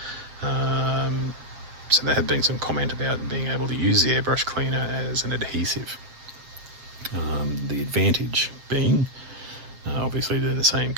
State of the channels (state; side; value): late; left; 7.4 ms